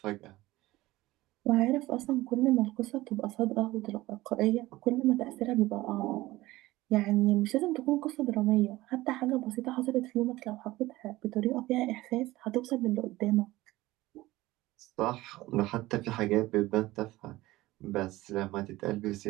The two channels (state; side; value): quieter; left; 18.1 dB